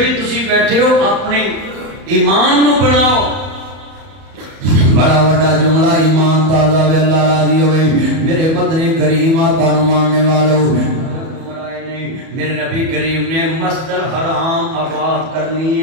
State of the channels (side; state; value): left; late; 31 ms